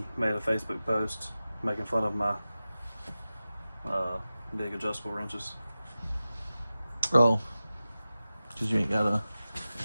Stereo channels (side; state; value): both; inverted; correlation -0.95